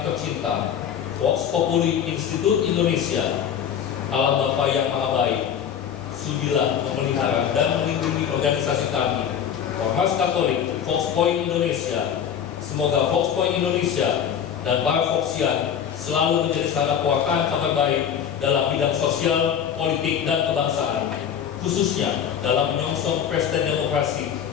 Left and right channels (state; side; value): quieter; right; 8.6 dB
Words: tercinta, Vox Populi Institute Indonesia, Allah Bapa yang Maha Baik, sudilah memelihara dan melindungi organisasi kami, Ormas Katolik Vox Point Indonesia. Semoga Vox Point Indonesia dan para Voxian selalu menjadi sarana pewartaan kabar baik dalam bidang sosial, politik, dan kebangsaan, khususnya dalam menyongsong pesta demokrasi